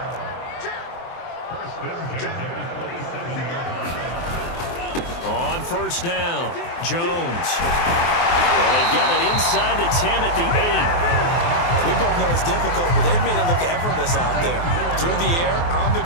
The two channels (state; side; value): late; right; 23 ms